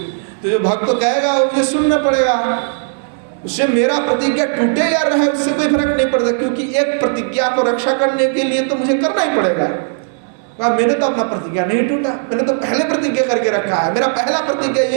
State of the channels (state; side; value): silent; left; digital silence